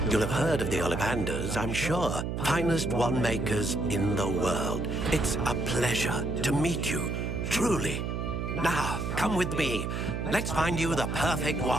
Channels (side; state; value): right; noise; hum, 3 dB below the sound